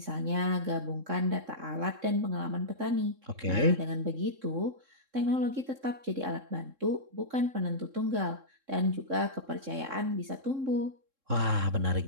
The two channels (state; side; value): late; left; 3.7 ms